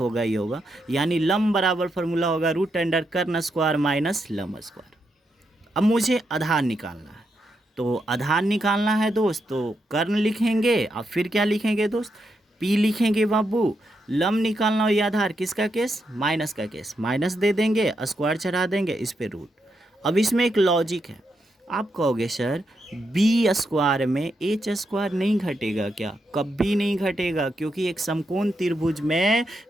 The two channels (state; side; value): normal; both; correlation 0.82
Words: ही होगा। यानी लंब बराबर फॉर्मूला होगा रूट अंडर कर्ण स्क्वायर माइनस लंब स्क्वायर। अब मुझे आधार निकालना है, तो आधार निकालना है दोस्त, तो कर्ण लिखेंगे और फिर क्या लिखेंगे दोस्त, P लिखेंगे बाबू। लंब निकालना हो या आधार, किसका केस, माइनस का केस, माइनस दे देंगे, स्क्वायर चढ़ा देंगे, इस पे रूट। अब इसमें एक लॉजिक है, आप कहोगे सर B स्क्वायर में H स्क्वायर नहीं घटेगा क्या, कभी नहीं घटेगा, क्योंकि एक समकोण त्रिभुज में